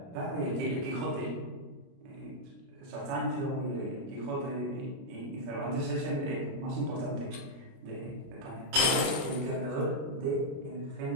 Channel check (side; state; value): left; late; 29 ms